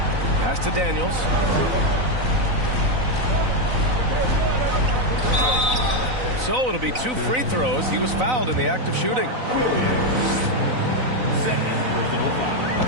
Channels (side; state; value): left; late; 4.0 ms